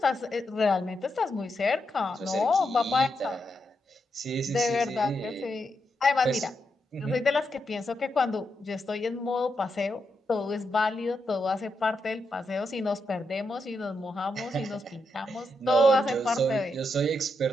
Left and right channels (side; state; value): both; normal; correlation 0.84